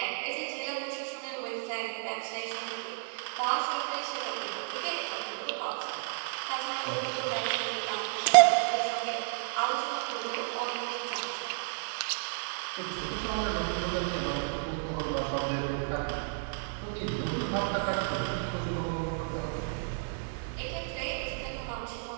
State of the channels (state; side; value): silent; left; digital silence